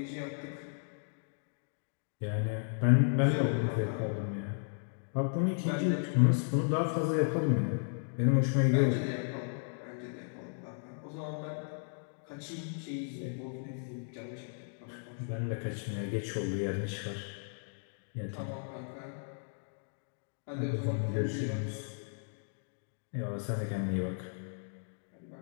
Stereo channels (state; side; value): silent; right; digital silence